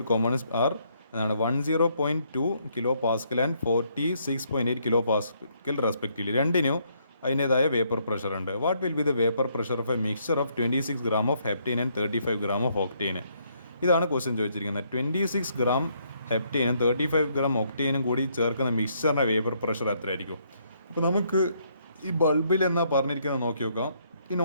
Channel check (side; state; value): both; inverted; correlation -0.71